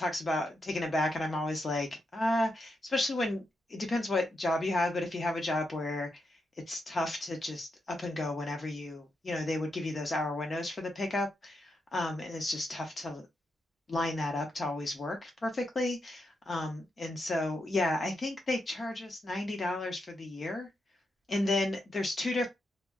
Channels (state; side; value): normal; both; correlation 0.84